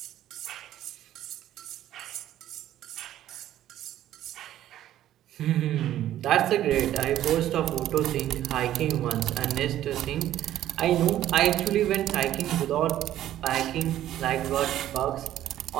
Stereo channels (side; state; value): left; quieter; 12.6 dB